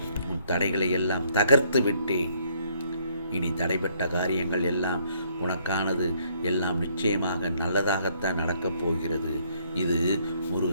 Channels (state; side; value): inverted; both; correlation -0.67